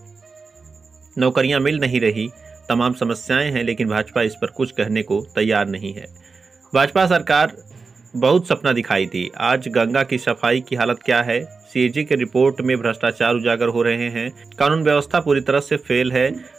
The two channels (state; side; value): quieter; left; 4.5 dB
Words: नौकरियां मिल नहीं रही, तमाम समस्याएं हैं, लेकिन भाजपा इस पर कुछ कहने को तैयार नहीं है। भाजपा सरकार बहुत सपना दिखाई थी। आज गंगा की सफाई की हालत क्या है? सीएजी की रिपोर्ट में भ्रष्टाचार उजागर हो रहे हैं। कानून व्यवस्था पूरी तरह से फेल है।